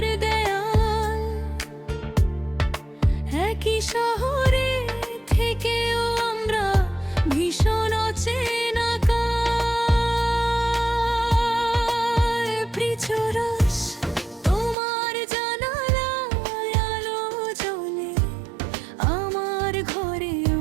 দেয়াল, একই শহরে থেকেও আমরা ভীষণ অচেনা কাল। প্রিচরস তোমার জানালায় আলো জ্বলে, আমার ঘরে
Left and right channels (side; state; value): left; drops out; at 14.8 s